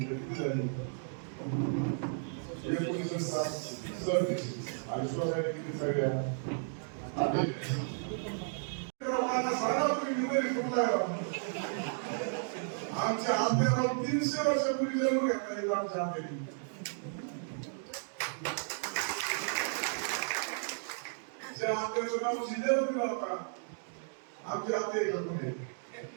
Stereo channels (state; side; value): silent; left; digital silence